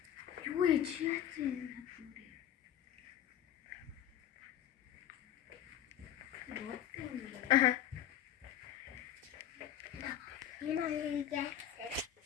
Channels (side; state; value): right; quieter; 10.8 dB